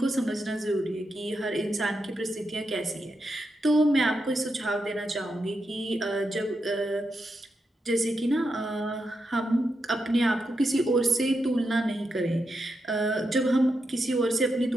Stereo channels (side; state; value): both; normal; correlation 0.85